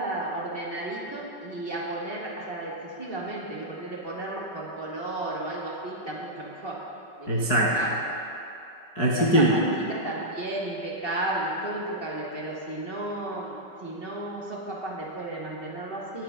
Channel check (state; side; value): late; right; 5.3 ms